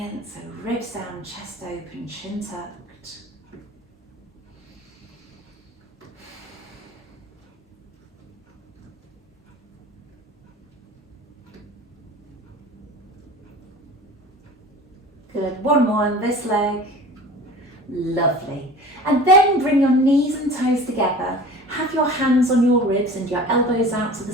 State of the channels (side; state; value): both; normal; correlation 0.40